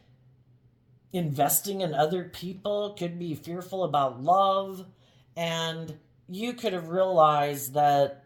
investing in other people. Could be fearful about love. And you could have realized that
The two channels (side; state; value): both; identical; correlation 1.00